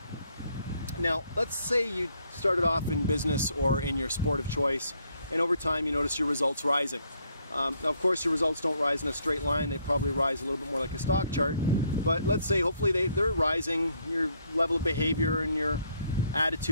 Now, let's say you started off in business or in your sport of choice, and over time you notice your results rising. Now, of course, your results don't rise in a straight line. They probably rise a little bit more like a stock chart. But let's say hopefully they're rising. Your level of behavior and your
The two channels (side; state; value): both; inverted; correlation -0.69